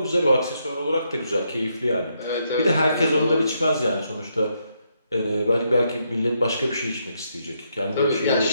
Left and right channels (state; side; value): inverted; both; correlation -0.78